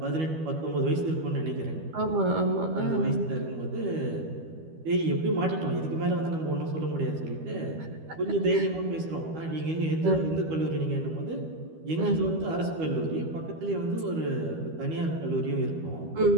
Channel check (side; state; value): left; late; 12 ms